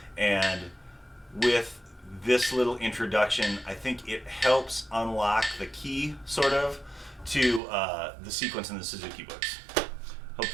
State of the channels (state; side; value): drops out; left; at 7.6 s